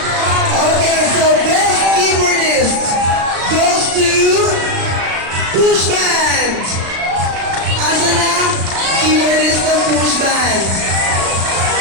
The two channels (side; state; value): left; late; 36 ms